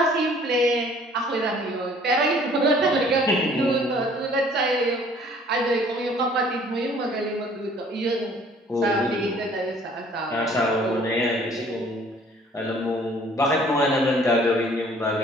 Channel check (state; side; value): normal; both; correlation 0.56